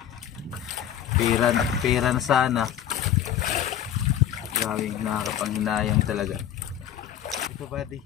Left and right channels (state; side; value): quieter; right; 10.3 dB